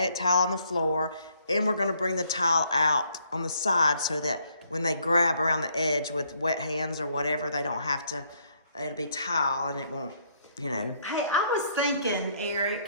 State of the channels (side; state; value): both; inverted; correlation -0.69